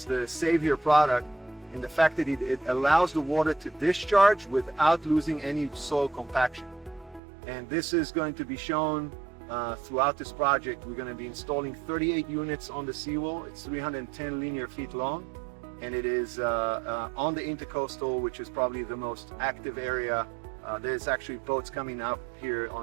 the savior product in the fact that it allows the water to discharge without losing any soil compaction. And this is going to be shown throughout this project. We're going to be installing 38 units on the seawall. It's 310 linear feet long, and it is on the intercoastal, which is probably the most active area. There's actually boats coming up here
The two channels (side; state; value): left; drops out; at 7.2 s